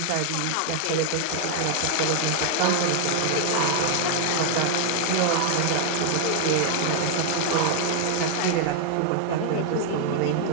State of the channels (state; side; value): different; both; correlation 0.00